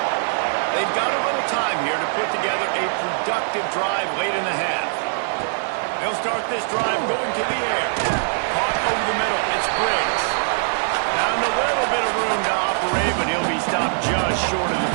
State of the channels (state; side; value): silent; left; digital silence